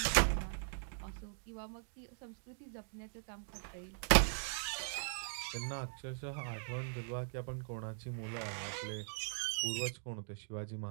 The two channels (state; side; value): silent; left; digital silence